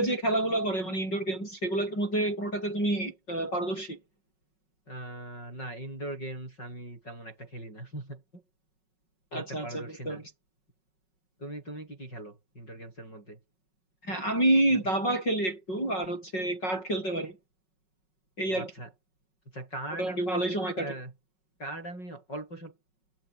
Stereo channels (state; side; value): late; right; 5.4 ms